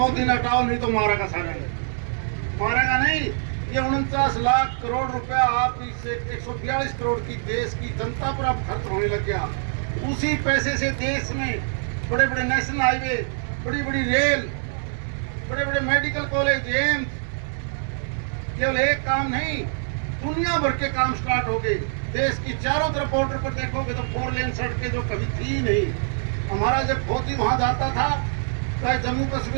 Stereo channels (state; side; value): silent; left; digital silence